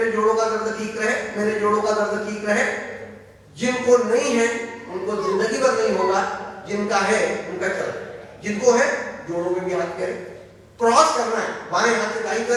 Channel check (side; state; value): both; identical; correlation 1.00